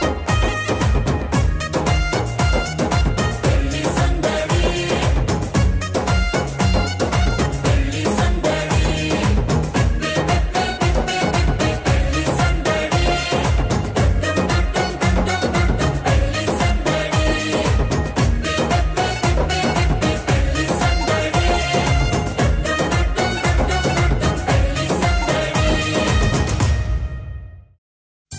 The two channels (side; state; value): both; identical; correlation 1.00